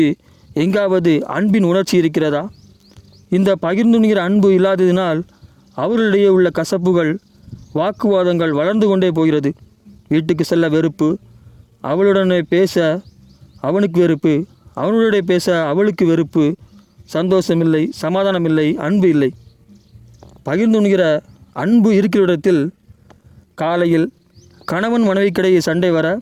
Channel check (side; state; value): both; identical; correlation 1.00